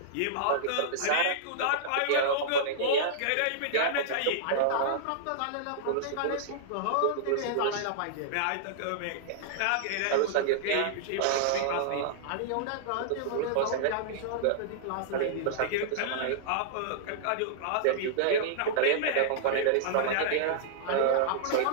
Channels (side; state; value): both; different; correlation -0.02